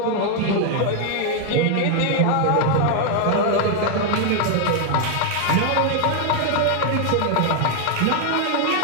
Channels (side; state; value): both; different; correlation 0.00